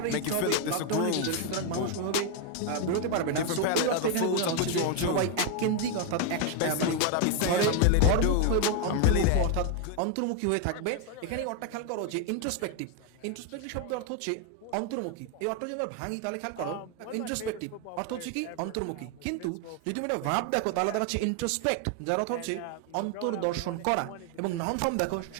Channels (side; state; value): both; different; correlation 0.01